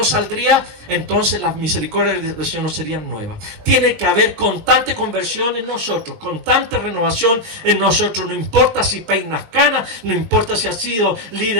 saldría, entonces las misericordias del Señor no serían nuevas. Tiene que haber constante conversión en nosotros, constante renovación en nosotros. No importa si peinas canas, no importa si has sido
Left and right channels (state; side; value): late; left; 20 ms